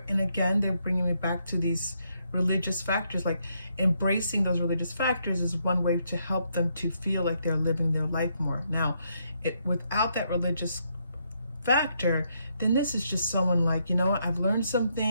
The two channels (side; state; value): both; inverted; correlation -0.77